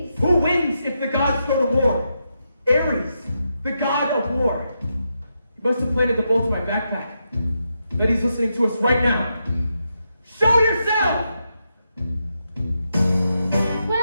Who wins if the gods go to war? Ares, the god of war. He must have planted the bolt in my backpack. Bet he's listening to us right now. Show yourself!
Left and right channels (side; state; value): both; inverted; correlation -0.84